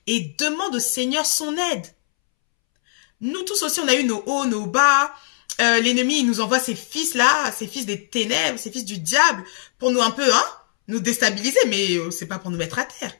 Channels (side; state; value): right; silent; 65 dB below the other